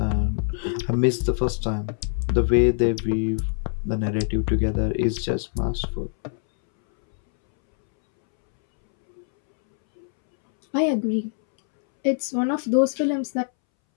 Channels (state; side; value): silent; right; 63 dB below the other